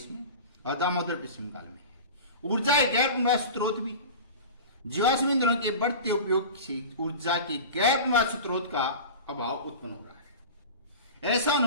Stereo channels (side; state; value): both; inverted; correlation -0.33